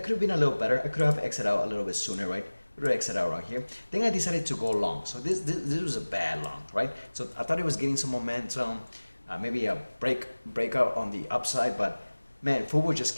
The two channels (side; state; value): both; inverted; correlation -1.00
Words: have been a little better. I could have exited out a little bit sooner, right? Exit out right here. Then I decided to go long. So this was a bad long, right? So I thought it was getting some momentum, maybe a breakout on the upside, but man, Fubo just